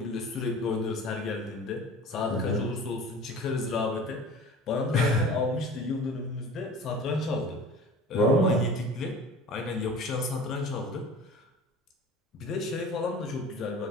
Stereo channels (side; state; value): both; normal; correlation 0.40